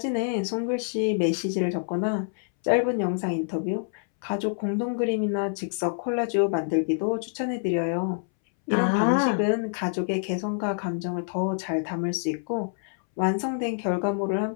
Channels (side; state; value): right; silent; 60 dB below the other